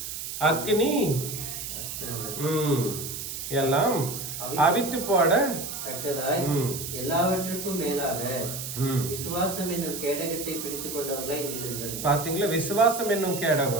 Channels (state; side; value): noise; right; hiss, 6 dB below the sound